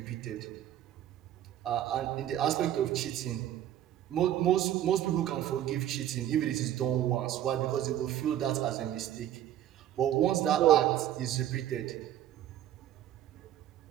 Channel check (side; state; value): left; quieter; 11.9 dB